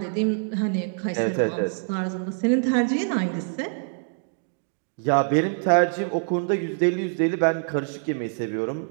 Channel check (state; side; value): silent; left; digital silence